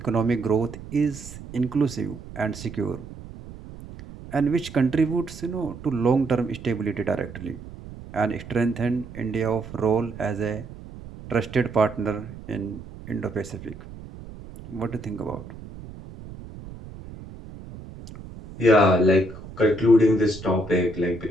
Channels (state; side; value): noise; right; rumble, 15 dB below the sound